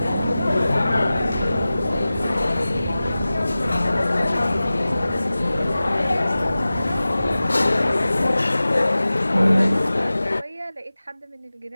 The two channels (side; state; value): both; inverted; correlation -0.96